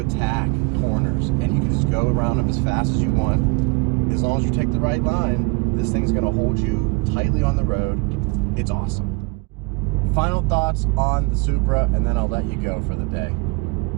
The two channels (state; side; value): quieter; left; 27.1 dB